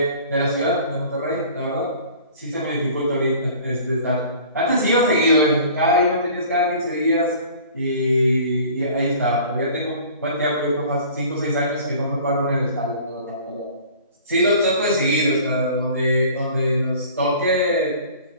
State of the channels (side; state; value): both; inverted; correlation -0.47